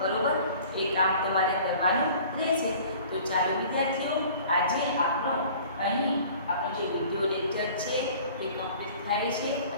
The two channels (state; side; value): inverted; both; correlation -0.47